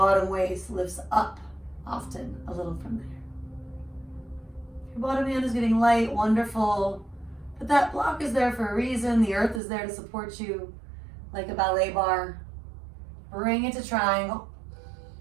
waist lifts up often a little from there. If your bottom hand is getting light, wonderful. But that block is there for a reason. The earth is there to support you like a ballet bar. Bring it to triangle.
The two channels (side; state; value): left; drops out; at 9.6 s